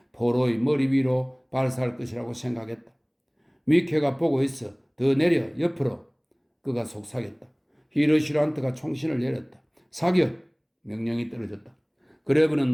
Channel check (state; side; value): identical; both; correlation 1.00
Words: 포로의 머리 위로 발사할 것이라고 생각했다. 미케가 보고 있어. 더 내려, 옆으로. 그가 속삭였다. 히르시란트가 총신을 내렸다. 사격! 명령이 떨어졌다. 그레브는